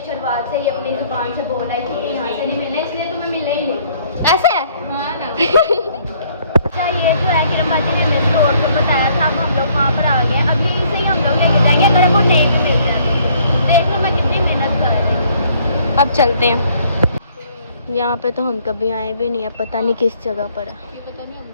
शुरुआत से ही अपनी जुबान से बोल रही थी कि यहाँ से नहीं मिलने, इसलिए तुम्हें मिलने ही नहीं। ऐसे है? हाँ ना। अच्छा, ये जो है किरण बाजी ने हमें स्टोर पर बताया था, अब हम लोग वहाँ पर आ गए। अब यहीं से ही हम लोग लेके जाएंगे, अगर वो नहीं भी मिल जाए। देख लो मैं कितनी मेहनत कर रही हूँ। अब चलते हैं। यहाँ पे तो हम कभी आए भी नहीं है, पता नहीं किस जगह पर है, पता नहीं हम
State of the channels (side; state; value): both; inverted; correlation -0.62